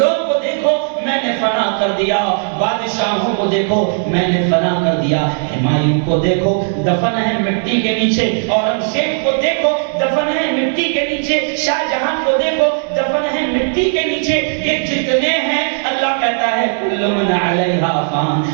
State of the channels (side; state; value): left; silent; digital silence